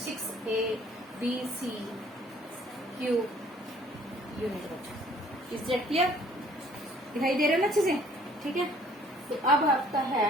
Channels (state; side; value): normal; both; correlation 0.58